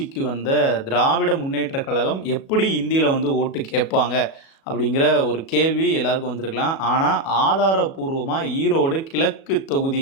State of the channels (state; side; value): late; right; 37 ms